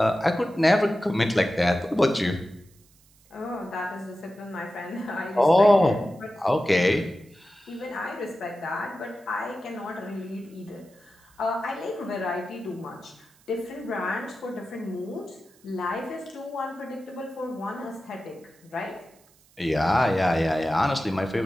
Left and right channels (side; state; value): right; noise; hiss, 30 dB below the sound